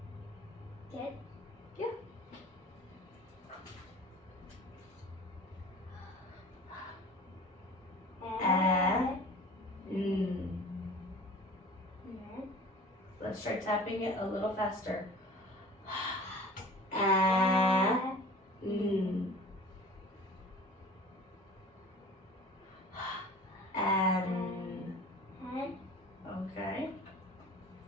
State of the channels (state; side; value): normal; both; correlation 0.42